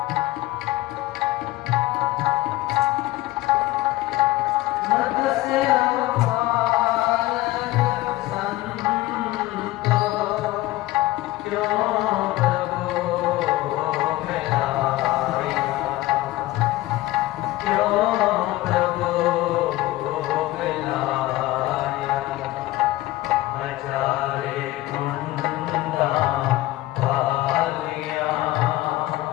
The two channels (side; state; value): right; quieter; 17.5 dB